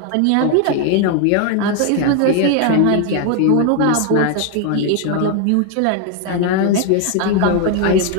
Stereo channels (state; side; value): different; both; correlation 0.00